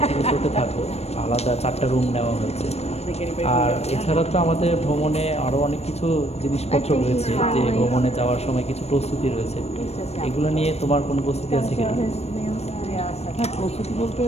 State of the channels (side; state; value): right; late; 0.31 ms